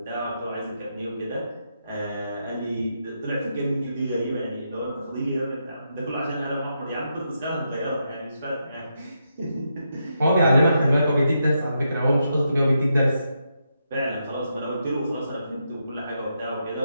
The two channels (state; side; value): inverted; both; correlation -0.82